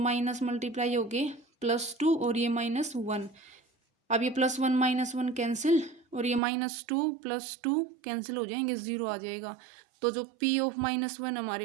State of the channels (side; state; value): left; drops out; at 6.4 s